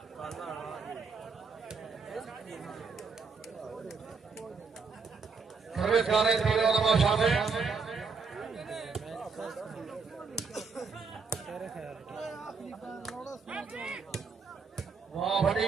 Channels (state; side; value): quieter; left; 5.0 dB